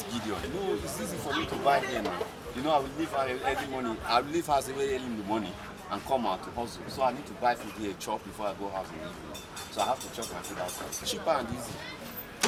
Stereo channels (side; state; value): both; identical; correlation 1.00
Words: Gideon. You know, it's easy for me to buy here now. You know, I will leave early morning. I will leave house very early in the morning and come out to hustle. So I need to buy food here, chop before I go house in the evening. So I have to chop my food outside. Cheaper and easy.